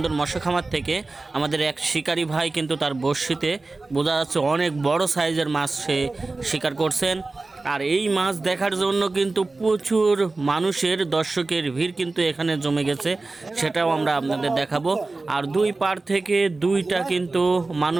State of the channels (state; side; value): quieter; left; 3.4 dB